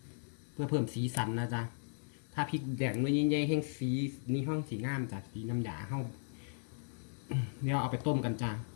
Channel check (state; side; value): silent; right; digital silence